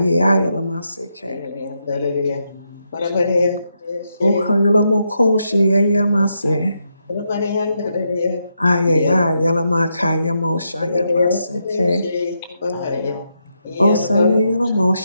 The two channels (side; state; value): both; inverted; correlation -0.82